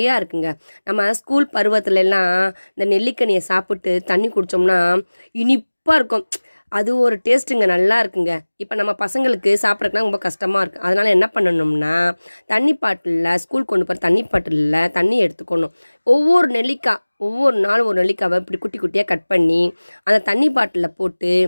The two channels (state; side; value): inverted; both; correlation -1.00